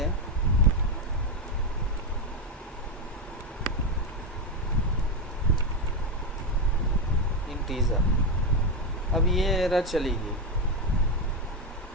इंटीजर, अब ये एरर चली गई,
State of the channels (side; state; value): both; normal; correlation 0.10